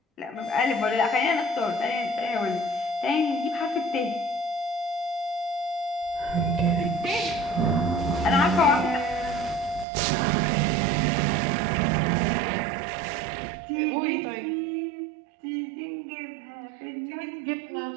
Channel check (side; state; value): left; drops out; at 9.9 s